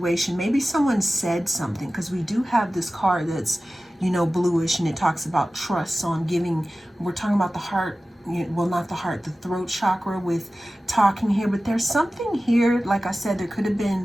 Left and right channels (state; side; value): normal; both; correlation 0.96